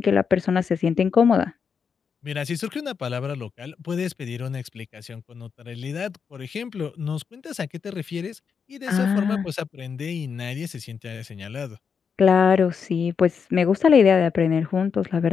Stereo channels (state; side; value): quieter; right; 6.3 dB